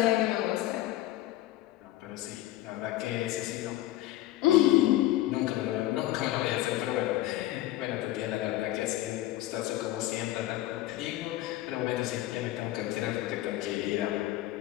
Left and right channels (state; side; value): quieter; right; 15.3 dB